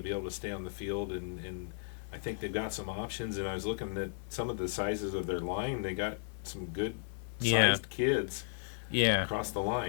able to stay on the field, and I think they've got some options. And I was looking at some of the sizes of their line. They got some good sized kids Yeah. across the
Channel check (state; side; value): silent; right; 55 dB below the other